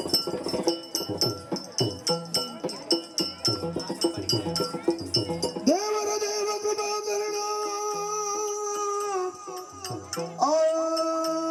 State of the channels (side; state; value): both; identical; correlation 1.00